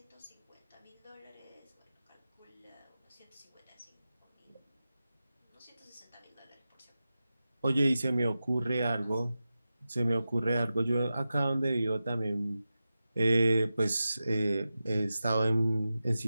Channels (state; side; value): inverted; both; correlation -0.93